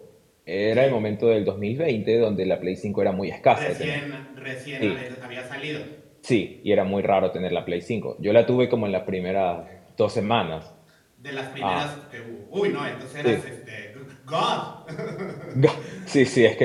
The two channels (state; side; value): identical; both; correlation 1.00